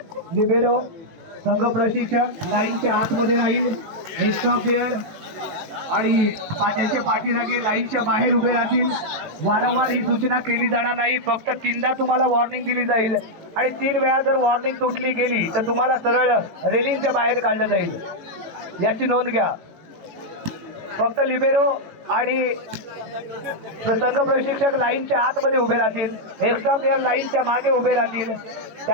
लिबेरो संघ प्रशिक्षक लाईनच्या आतमध्ये राहील. एक्स्ट्रा प्लेयर आणि त्यांच्या पाठीराखे लाईनच्या बाहेर उभे राहतील. वारंवार ही सूचना केली जाणार नाही. फक्त 3दा तुम्हाला वॉर्निंग दिली जाईल आणि 3 वेळा जर वॉर्निंग तुटली गेली तर तुम्हाला सरळ रेलिंगच्या बाहेर काढलं जाईल. याची नोंद घ्या. फक्त लिबेरो आणि संघ प्रशिक्षक लाईनच्या आतमध्ये उभे राहतील. एक्स्ट्रा प्लेयर लाईनच्या मागे उभे राहतील.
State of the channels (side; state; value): left; late; 18 ms